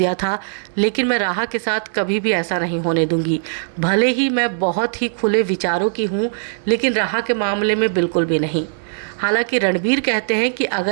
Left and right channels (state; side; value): silent; left; digital silence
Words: था, लेकिन मैं राहा के साथ कभी भी ऐसा नहीं होने दूंगी। भले ही मैं बहुत ही खुले विचारों की हूँ, लेकिन राहा के मामले में बिल्कुल भी नहीं। हालांकि रणबीर कहते हैं कि